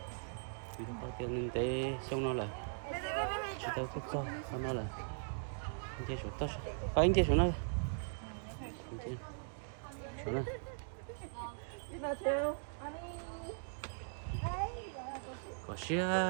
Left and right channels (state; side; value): silent; left; digital silence